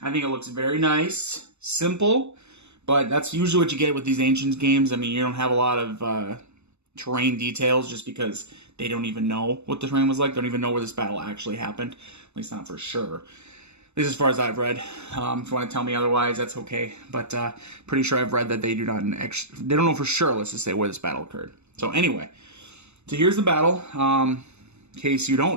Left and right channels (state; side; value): late; left; 0.81 ms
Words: think it looks very nice, simple, but that's usually what you get with these Ancients games. I mean, you don't have a lot of terrain details just because they don't even know what the terrain was like. They don't even know where this battle actually happened, at least not for sure. At least as far as I've read. If you want to tell me otherwise, that's okay. But pretty sure I've read that they don't know for sure, let's just say, where this battle occurred. So anyway, so here's the battle. In case you